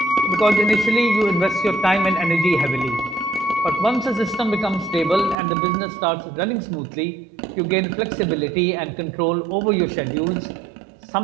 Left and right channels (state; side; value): drops out; left; at 5.4 s